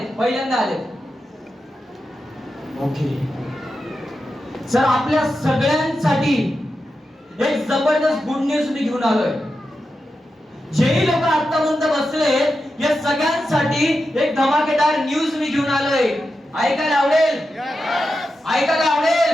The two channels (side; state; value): both; normal; correlation 0.89